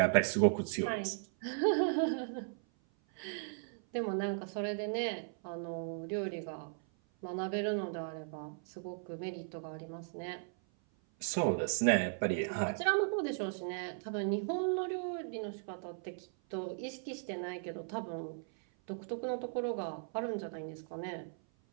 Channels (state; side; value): silent; left; 53 dB below the other